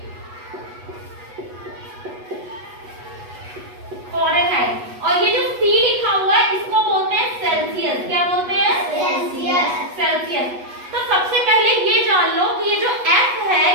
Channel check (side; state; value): left; late; 8.2 ms